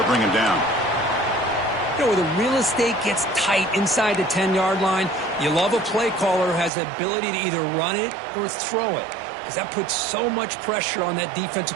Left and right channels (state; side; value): drops out; left; at 6.7 s